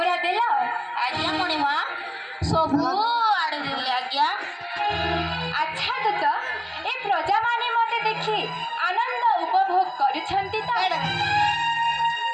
देल आज्ञा मणिमा सबु आड़े देली आज्ञा अच्छा दूत ए प्रजा माने मते देखि आनंद उपभोग करुछंती तो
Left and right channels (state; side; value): identical; both; correlation 1.00